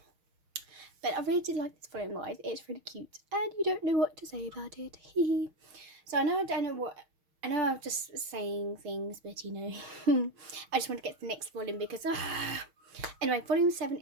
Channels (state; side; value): late; left; 6.4 ms